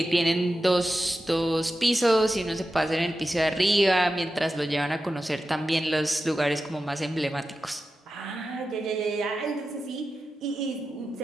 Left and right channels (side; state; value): both; normal; correlation 0.92